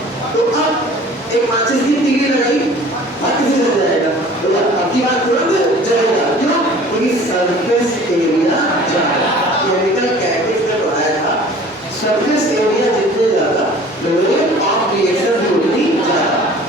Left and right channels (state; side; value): normal; both; correlation 0.47